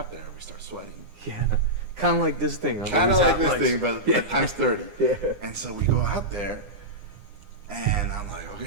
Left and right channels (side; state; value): left; late; 9.8 ms